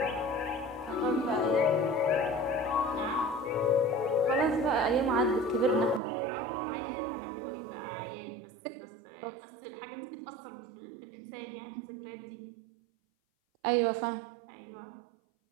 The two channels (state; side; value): drops out; left; at 6.0 s